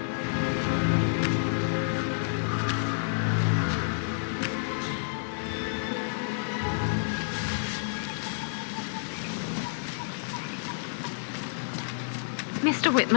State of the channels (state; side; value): silent; right; 58 dB below the other